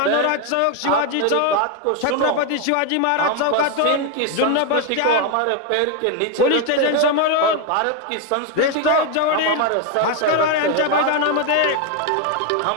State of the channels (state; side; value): different; both; correlation 0.01